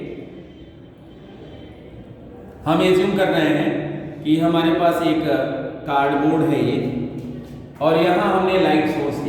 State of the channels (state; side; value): identical; both; correlation 1.00